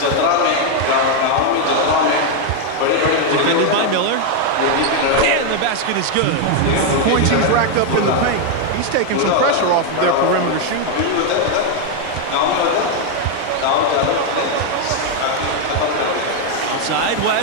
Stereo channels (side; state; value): both; different; correlation 0.01